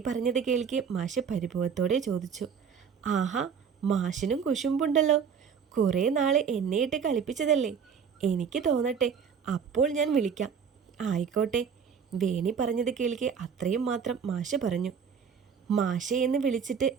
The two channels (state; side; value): quieter; left; 6.8 dB